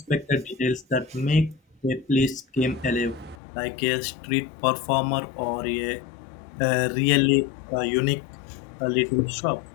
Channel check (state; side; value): drops out; right; at 3.4 s